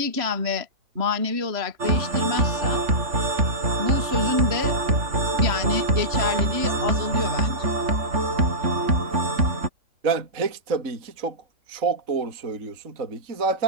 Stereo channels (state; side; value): late; left; 3.0 ms